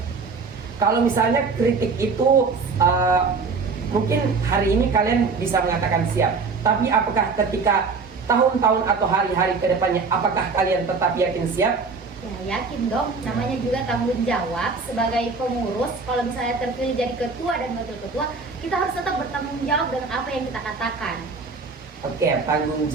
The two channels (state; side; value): quieter; left; 4.5 dB